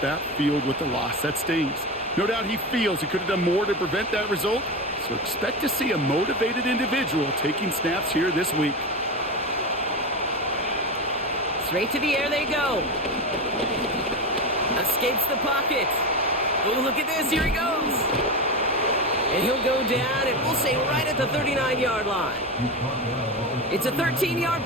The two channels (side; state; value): both; normal; correlation 0.20